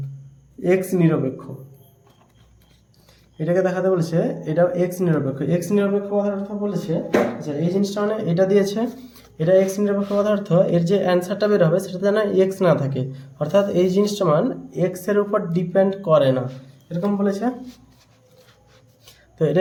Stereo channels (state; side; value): identical; both; correlation 1.00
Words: এক্স নিরপেক্ষ। এটাকে দেখাতে বলেছে এটা এক্স নিরপেক্ষ। এক্স নিরপেক্ষ কথার অর্থ বলেছে, আচ্ছা এই জিনিসটা মানে এটা দিয়েছে, এটা এক্স নিরপেক্ষ কথার অর্থ এর যে অ্যান্সারটা বের হবে সেটা যেন এক্স না থাকে, অর্থাৎ এই জিনিসটা মান এক্সের উপর ডিপেন্ড করে না, এরকম বলেছে। তো এটা